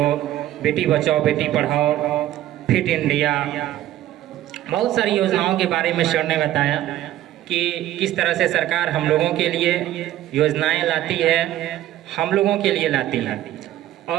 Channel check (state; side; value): quieter; left; 13.5 dB